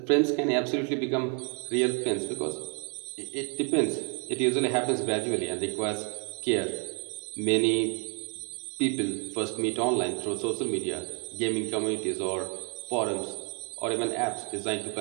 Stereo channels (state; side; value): quieter; left; 38.5 dB